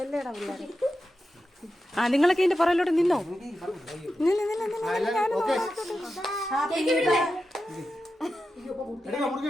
ആ നിങ്ങളൊക്കെ ഇതിന്റെ പുറകിലോട്ട് നിന്നോ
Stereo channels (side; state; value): both; normal; correlation 0.90